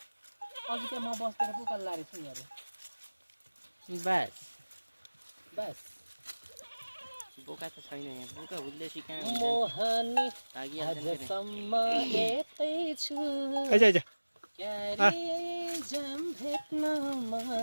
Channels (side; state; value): both; inverted; correlation -1.00